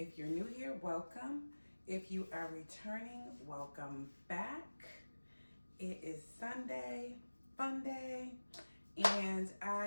you're new here, welcome. If you are returning, welcome back. It is Sunday, fun day, and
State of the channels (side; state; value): both; inverted; correlation -1.00